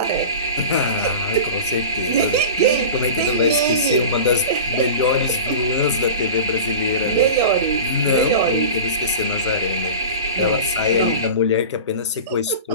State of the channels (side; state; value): both; inverted; correlation -0.33